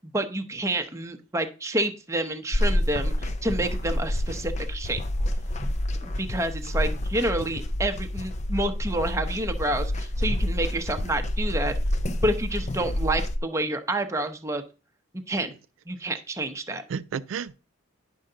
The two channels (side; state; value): both; normal; correlation 0.62